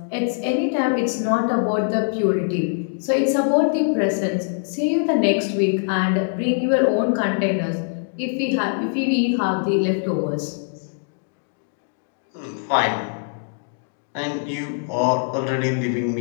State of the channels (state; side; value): silent; right; digital silence